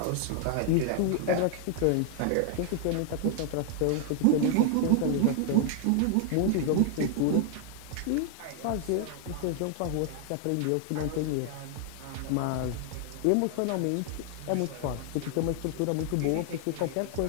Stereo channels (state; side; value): different; both; correlation 0.00